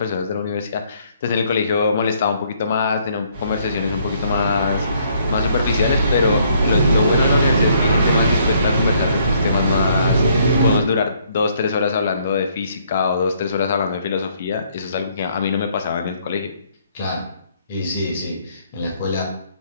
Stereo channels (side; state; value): both; inverted; correlation -0.66